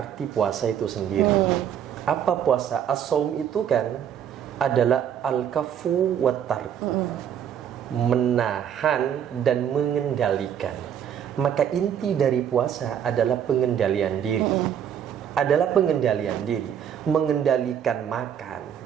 puasa itu sendiri. Apa puasa? As-saum itu kan adalah al-kafu wa tarku, menahan dan mengendalikan. Maka inti dari puasa adalah pengendalian diri. Adalah pengendalian diri. Mengendalikan makan,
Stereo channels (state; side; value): quieter; left; 9.1 dB